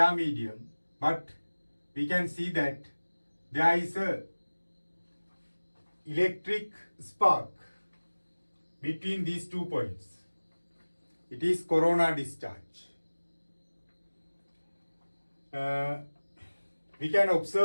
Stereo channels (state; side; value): inverted; both; correlation -1.00